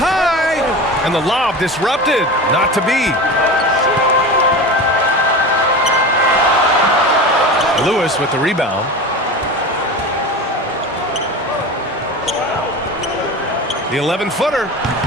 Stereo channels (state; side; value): normal; both; correlation 0.29